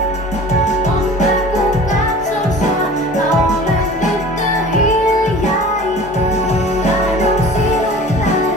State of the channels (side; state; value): both; normal; correlation 0.42